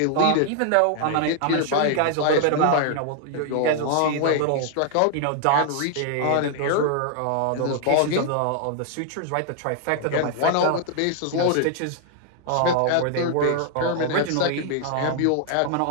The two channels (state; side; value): different; both; correlation 0.00